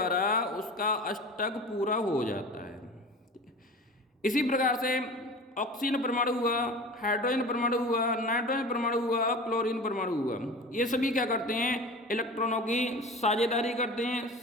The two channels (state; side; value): normal; both; correlation 0.36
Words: उसका अष्टक पूरा हो जाता है। इसी प्रकार से ऑक्सीजन परमाणु हुआ, हाइड्रोजन परमाणु हुआ, नाइट्रोजन परमाणु हुआ, क्लोरीन परमाणु हुआ, ये सभी क्या करते हैं, इलेक्ट्रॉनों की साझेदारी करते हैं,